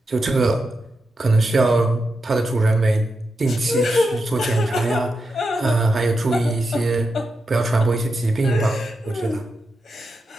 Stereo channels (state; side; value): normal; both; correlation 0.87